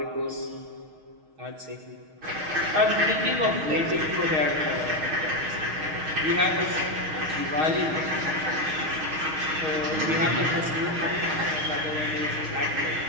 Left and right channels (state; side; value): late; left; 6.4 ms